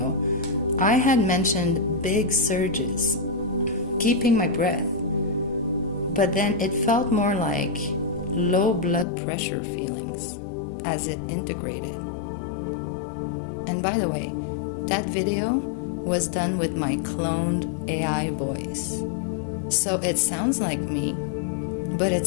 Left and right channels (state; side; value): drops out; right; at 9.1 s